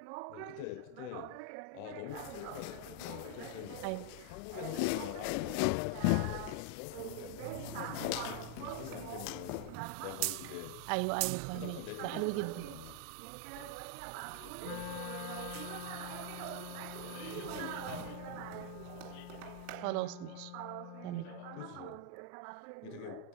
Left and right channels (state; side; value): different; both; correlation 0.00